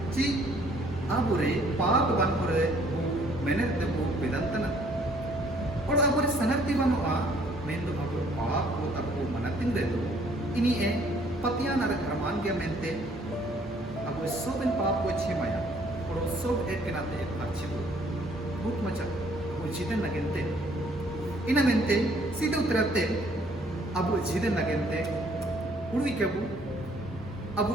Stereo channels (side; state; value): both; normal; correlation 0.62